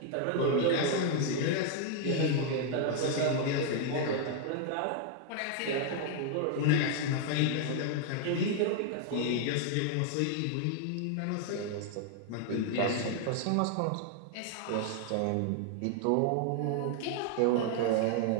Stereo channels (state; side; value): different; both; correlation 0.00